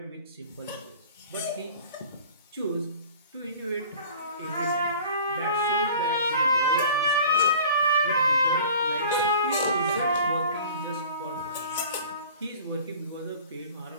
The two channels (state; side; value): inverted; both; correlation -0.45